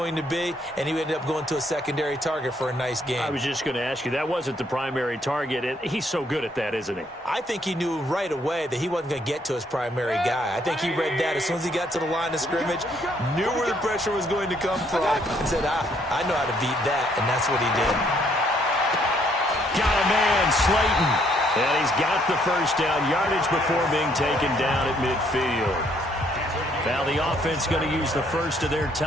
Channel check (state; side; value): normal; both; correlation 0.68